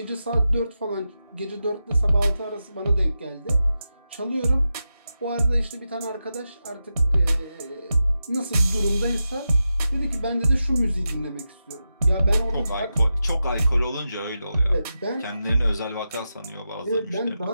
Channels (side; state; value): both; inverted; correlation -0.90